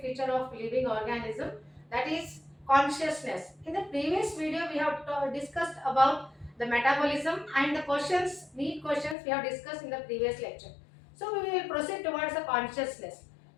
feature of living organism, that is consciousness. In the previous video, we have discussed about the metabolism and the neat questions we have discussed in the previous lecture. So we will proceed towards the consciousness.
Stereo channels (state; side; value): drops out; right; at 9.2 s